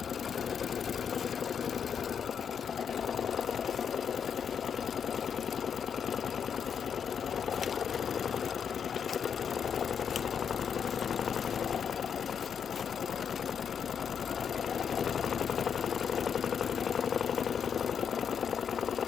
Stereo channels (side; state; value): right; quieter; 7.3 dB